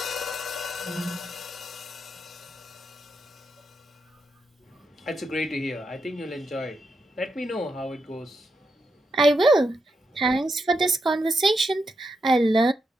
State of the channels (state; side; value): normal; both; correlation 0.84